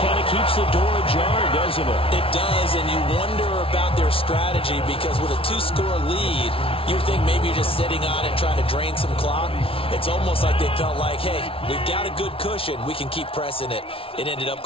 kind of keeps the door ajar, doesn't it? It does, and you wonder about their strategy because with a 2-score lead, you would think maybe you're just sitting on it trying to drain some clock. It's almost like they felt like, hey, we've got a good cushion. We can keep pressing it. It ended up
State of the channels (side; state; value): right; late; 0.26 ms